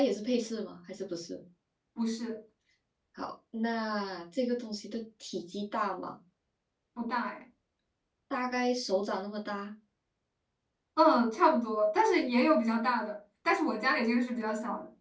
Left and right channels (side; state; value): both; identical; correlation 1.00